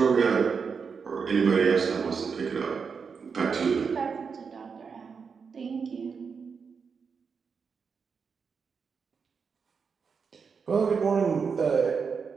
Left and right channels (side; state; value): left; quieter; 5.8 dB